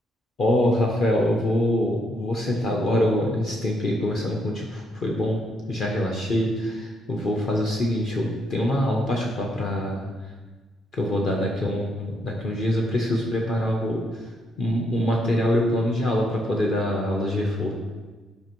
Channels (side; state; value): both; normal; correlation 0.75